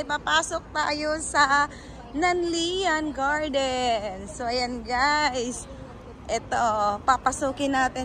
papasok tayo sa Nanlian Garden. So ayan guys, ito, papasukin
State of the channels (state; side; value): identical; both; correlation 1.00